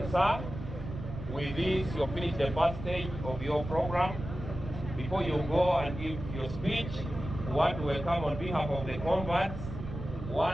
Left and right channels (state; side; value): noise; right; rumble, 9 dB below the sound